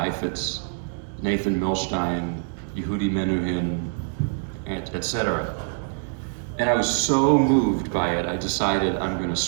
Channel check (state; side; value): silent; left; 62 dB below the other